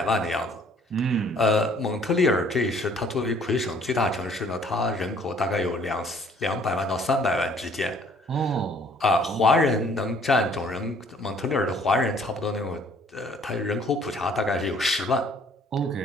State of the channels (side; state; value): both; normal; correlation 0.58